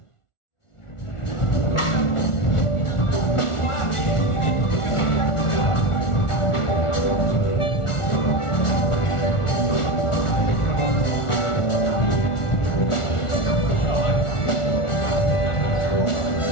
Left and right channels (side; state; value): right; late; 1.4 ms